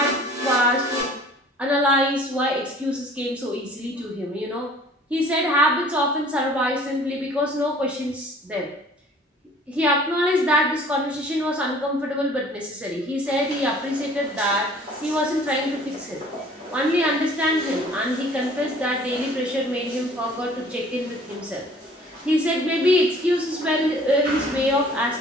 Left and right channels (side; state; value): both; normal; correlation 0.52